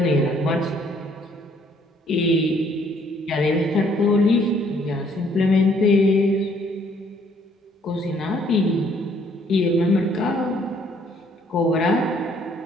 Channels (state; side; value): normal; both; correlation 0.64